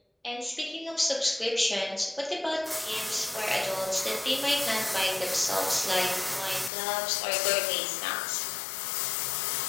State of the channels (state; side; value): drops out; right; at 6.7 s